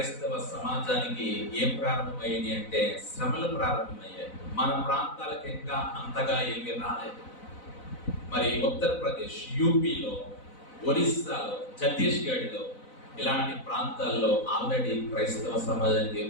సమాజానికి ఏం ప్రారంభమయ్యాయి అంటే శ్రమలు ప్రారంభమయ్యాయి. మన ప్రాంతాలకు ఇంకా అంతగా ఏమీ రాలేదు. మరి ఉత్తరప్రదేశ్, యూపీలో, ఒరిస్సాలో, ఛత్తీస్గఢ్లో ఇలాంటి ప్రాంతాల్లో ఆల్రెడీ క్రైస్తవ సమాజానికి ఏం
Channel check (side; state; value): right; late; 4.0 ms